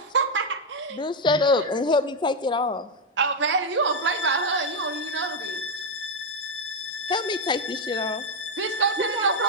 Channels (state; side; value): normal; both; correlation 0.04